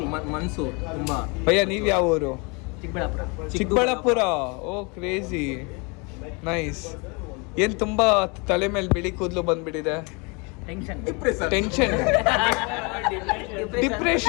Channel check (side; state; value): right; quieter; 30.5 dB